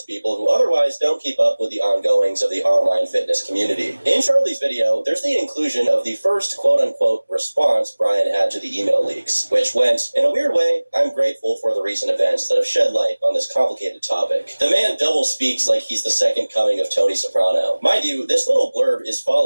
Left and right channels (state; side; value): inverted; both; correlation -1.00